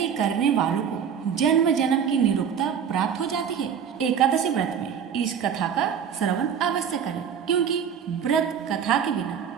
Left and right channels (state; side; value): quieter; left; 7.8 dB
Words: करने वालों को जन्म जन्म की निरुक्ता प्राप्त हो जाती है। एकादशी व्रत में इस कथा का श्रवण अवश्य करें, क्योंकि व्रत कथा के बिना